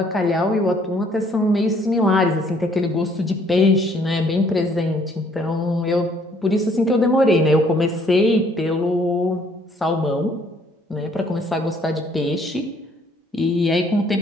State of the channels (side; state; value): both; normal; correlation 0.63